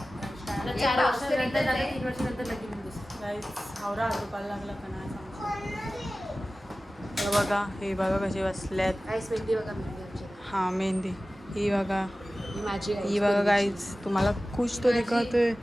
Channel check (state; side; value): normal; both; correlation 0.96